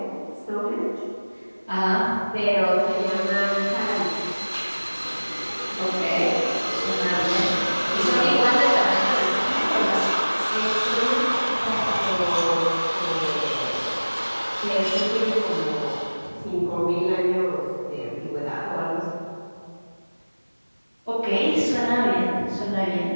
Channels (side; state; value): both; inverted; correlation -1.00